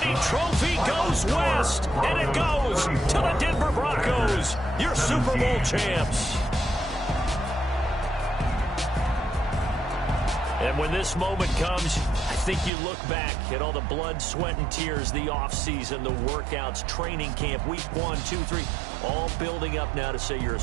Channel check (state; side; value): drops out; left; at 12.7 s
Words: Trophy goes west, and it goes to the Denver Broncos, your Super Bowl champs. And when this moment comes, I think you look back at all the blood, sweat, and tears, the offseason, the workouts, training camp, week 1, 2, 3, all building up now to say you're a